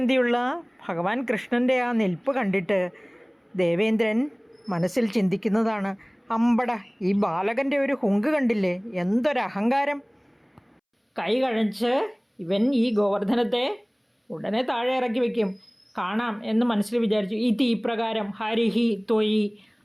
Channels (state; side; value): identical; both; correlation 1.00